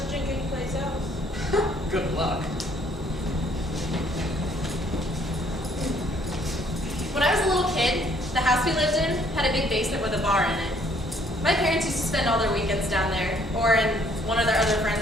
to drink anyplace else. Good luck. When I was a little kid, the house we lived in had a big basement with a bar in it. My parents used to spend all their weekends down there, or in one of their other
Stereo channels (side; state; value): both; normal; correlation 0.63